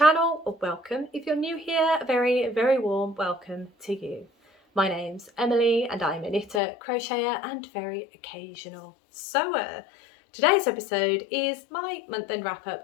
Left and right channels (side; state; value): right; drops out; at 6.6 s